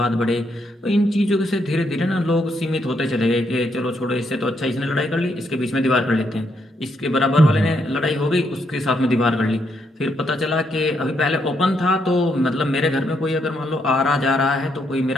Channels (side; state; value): both; normal; correlation 0.77